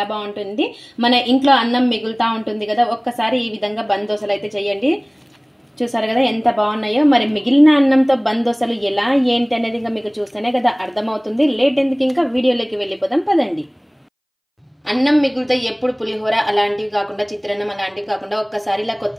బాగుంటుంది. మన ఇంట్లో అన్నం మిగులుతా ఉంటుంది కదా, ఒక్కసారి ఈ విధంగా బంద్ దోశలు అయితే చేయండి. చూసారు కదా ఎంత బాగున్నాయో. మరి మిగిలిన అన్నంతో బంద్ దోశలు ఎలా ఏంటి అనేది ఇంకా మీకు చూస్తేనే కదా అర్థమవుతుంది. లేట్ ఎందుకు, ఇంకా వీడియోలోకి వెళ్ళిపోదాం పదండి. అన్నం మిగులుతో ఎప్పుడు పులిహోర అలాంటివి కాకుండా, చిత్రాన్నం అలాంటివి కాకుండా ఒక్కసారి ఇలా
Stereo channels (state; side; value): identical; both; correlation 1.00